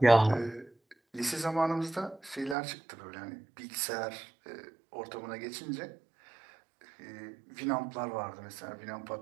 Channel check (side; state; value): left; drops out; at 2.6 s